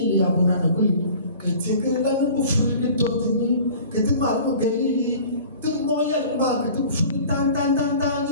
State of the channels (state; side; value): inverted; both; correlation -0.44